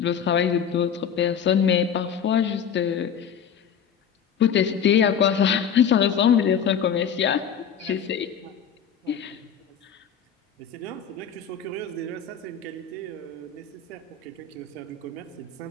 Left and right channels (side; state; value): right; quieter; 7.6 dB